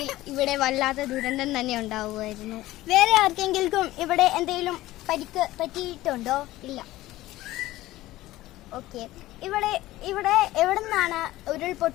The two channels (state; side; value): quieter; right; 16.8 dB